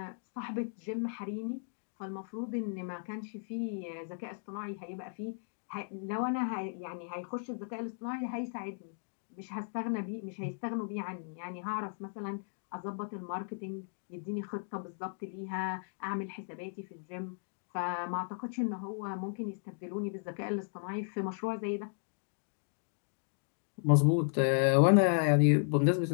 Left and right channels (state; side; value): silent; right; digital silence